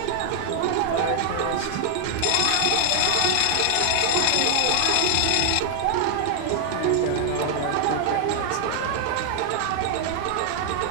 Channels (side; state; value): both; different; correlation 0.00